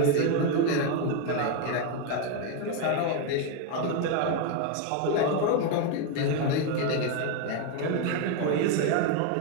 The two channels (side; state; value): both; different; correlation 0.02